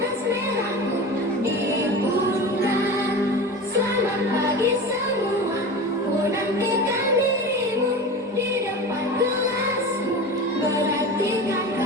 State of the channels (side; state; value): both; normal; correlation 0.31